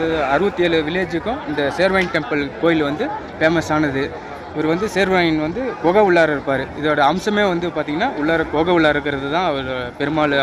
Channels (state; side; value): identical; both; correlation 1.00